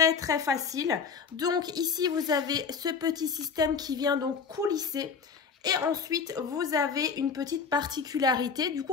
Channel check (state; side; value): quieter; right; 5.8 dB